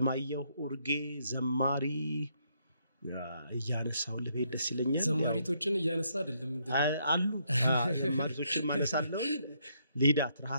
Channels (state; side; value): inverted; both; correlation -0.73